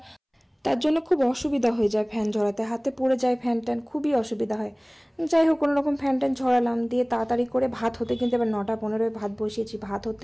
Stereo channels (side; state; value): both; identical; correlation 1.00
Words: তার জন্য খুব অসুবিধা হয়ে যায়, ফ্যান ঝরাতে হাতে পড়ে যায়, ফ্যান ট্যান খুবই অসুবিধা হয়। যাই হোক, কোনো রকম ফ্যান ট্যান ঝরালাম, দিয়ে তাড়াতাড়ি করে ভাত হতে, কিন্তু এবার 9:15 ভাত বসিয়েছি, ভাত